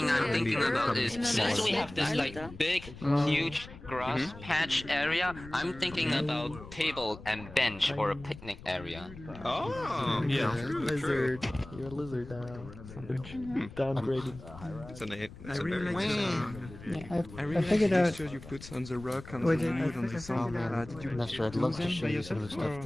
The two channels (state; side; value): noise; left; rumble, 16 dB below the sound